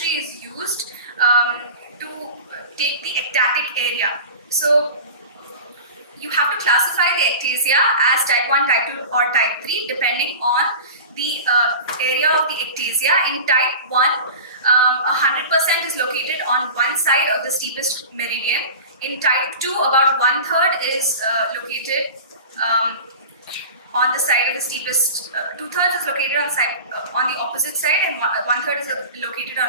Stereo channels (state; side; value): inverted; both; correlation -0.34